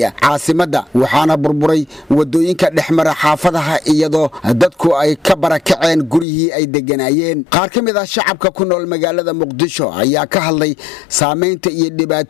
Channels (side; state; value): right; drops out; at 6.2 s